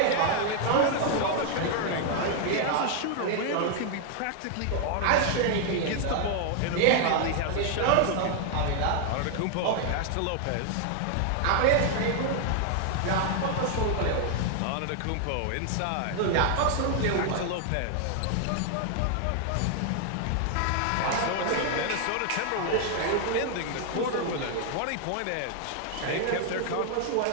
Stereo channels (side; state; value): both; different; correlation 0.00